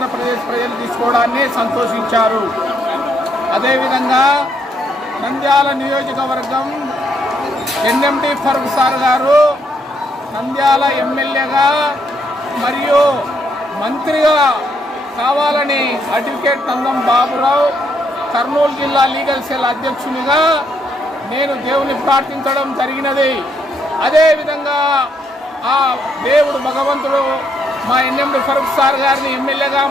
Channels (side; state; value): both; normal; correlation 0.73